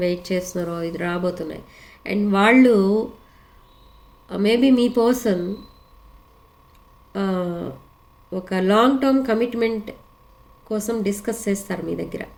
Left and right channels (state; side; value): identical; both; correlation 1.00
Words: వెయిట్ చేస్తున్నారో ఇది రాబోతున్నాయి. అండ్ వాళ్ళు మేబీ మీ పర్సన్ ఒక లాంగ్ టర్మ్ కమిట్మెంట్ కోసం డిస్కస్ చేస్తారు మీ దగ్గర,